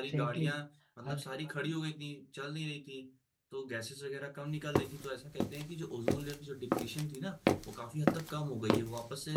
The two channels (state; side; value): identical; both; correlation 1.00